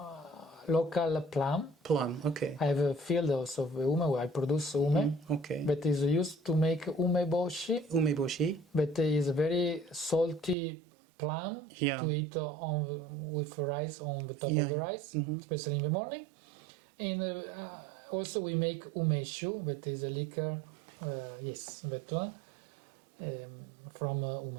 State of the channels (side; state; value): left; drops out; at 10.6 s